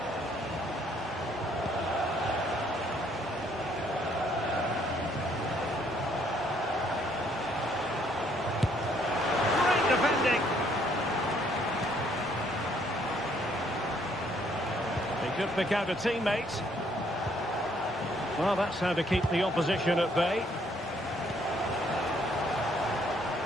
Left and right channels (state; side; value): normal; both; correlation 0.67